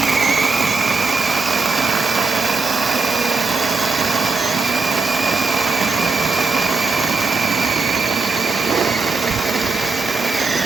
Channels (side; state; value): left; quieter; 4.2 dB